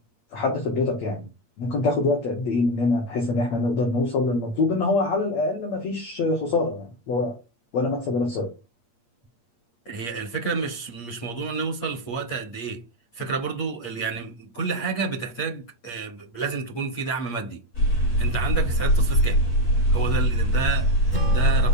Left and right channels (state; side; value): late; right; 8.5 ms